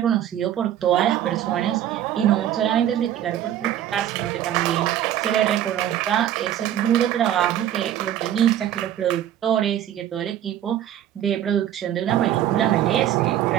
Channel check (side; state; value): left; quieter; 11.3 dB